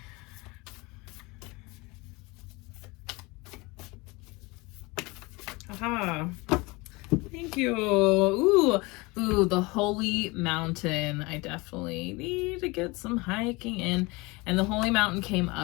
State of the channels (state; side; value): quieter; right; 24.7 dB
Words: Aha. Thank you. Ooh, the Holy Mountain. I definitely need to get some hiking in. And the Holy Mountain came